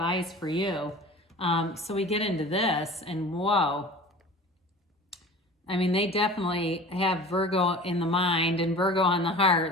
for you? So we get into this, and whoa. I mean, they definitely have Virgo in the mind and Virgo on the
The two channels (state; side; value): normal; both; correlation 0.40